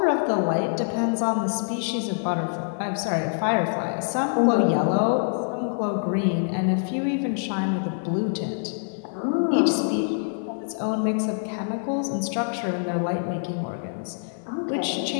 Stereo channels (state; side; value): silent; right; digital silence